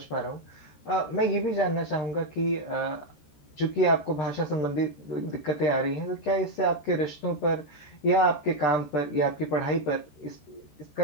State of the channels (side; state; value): right; late; 14 ms